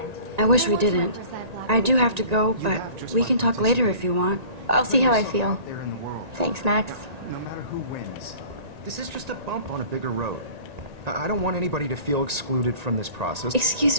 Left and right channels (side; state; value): left; late; 1.9 ms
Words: I wish we didn't. I do have to go, but we can talk later if you want. I'll see how I feel. there in the world. Thanks, Max. No matter who wins, this is just a bump on a bigger road. I don't want anybody to feel excluded from this process.